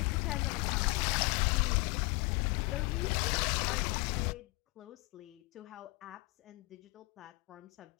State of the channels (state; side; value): quieter; right; 25.9 dB